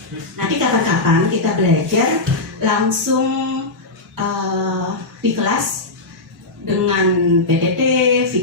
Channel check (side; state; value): right; quieter; 3.1 dB